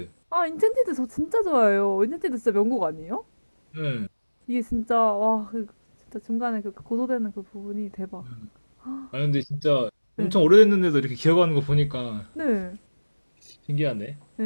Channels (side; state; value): both; inverted; correlation -1.00